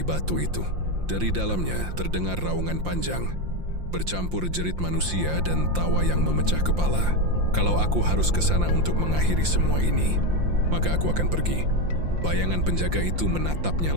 itu. Dari dalamnya terdengar raungan panjang, bercampur jerit manusia dan tawa yang memecah kepala. "Kalau aku harus ke sana untuk mengakhiri semua ini, maka aku akan pergi." Bayangan penjaga itu menatapnya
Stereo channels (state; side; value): late; left; 5.7 ms